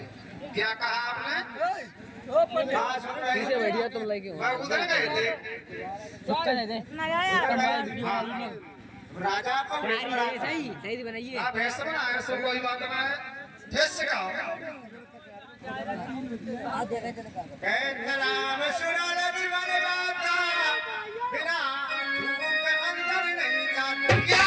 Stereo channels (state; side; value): identical; both; correlation 1.00